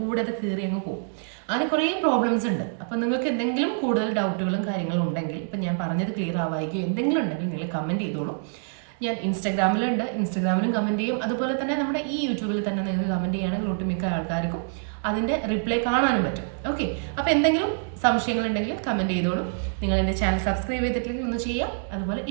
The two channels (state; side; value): silent; left; digital silence